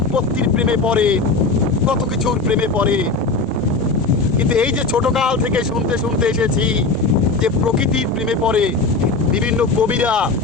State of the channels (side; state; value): right; quieter; 3.8 dB